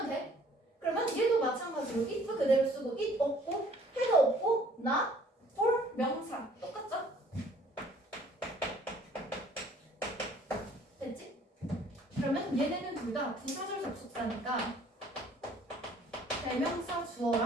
돼. 그러면 얘도 마찬가지로 if 그대로 쓰고 it 없고 had 없고 not for 명사 똑같죠? 됐지? 그러면 얘네는 둘 다 부사절 접속사니까 대명사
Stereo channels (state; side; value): normal; both; correlation 0.57